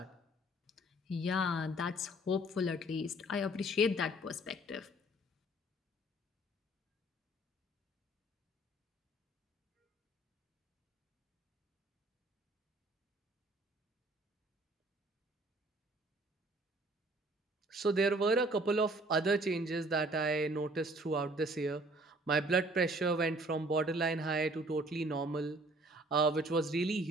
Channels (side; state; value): both; normal; correlation 0.56